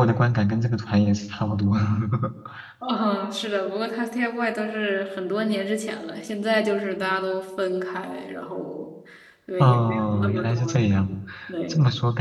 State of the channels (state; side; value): identical; both; correlation 1.00